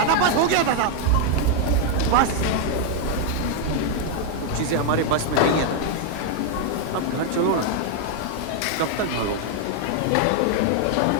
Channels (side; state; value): both; different; correlation 0.00